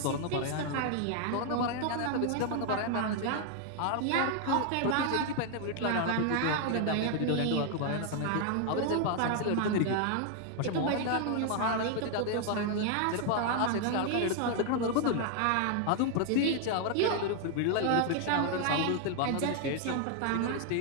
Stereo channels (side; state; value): both; different; correlation 0.00